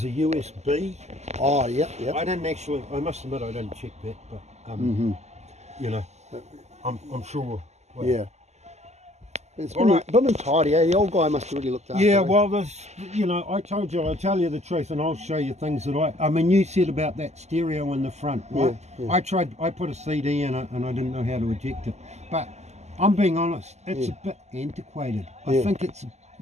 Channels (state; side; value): late; left; 0.33 ms